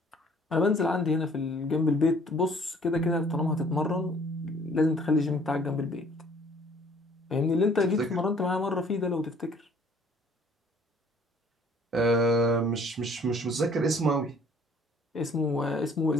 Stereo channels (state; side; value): normal; both; correlation 0.57